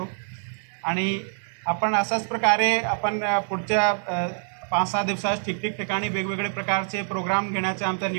आणि आपण अशाच प्रकारे आपण पुढच्या 5-6 दिवसात ठिकठिकाणी वेगवेगळे प्रकारचे प्रोग्राम घेण्याचे आमचं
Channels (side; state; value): left; silent; digital silence